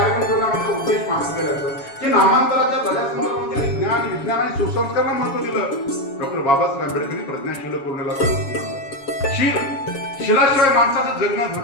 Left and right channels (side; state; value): right; late; 7.3 ms